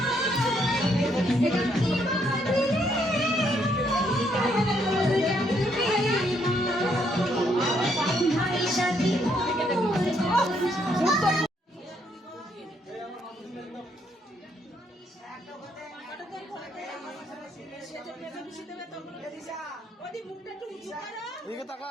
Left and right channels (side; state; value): both; normal; correlation 0.72